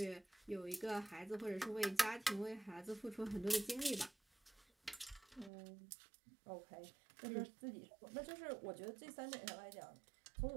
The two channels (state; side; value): drops out; left; at 5.5 s